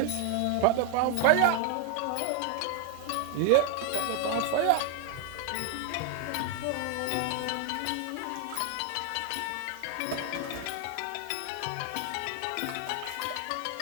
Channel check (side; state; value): both; different; correlation 0.01